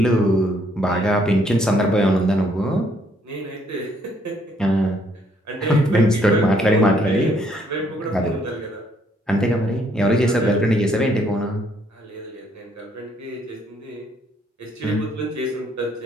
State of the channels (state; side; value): normal; both; correlation 0.68